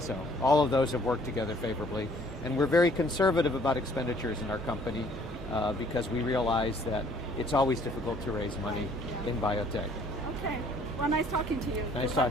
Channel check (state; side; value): normal; both; correlation 0.59